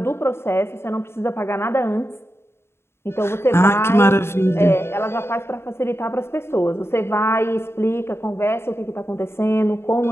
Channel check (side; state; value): right; late; 0.12 ms